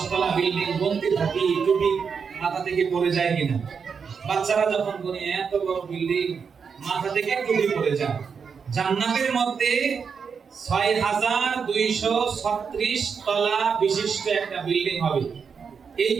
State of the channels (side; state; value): left; quieter; 6.1 dB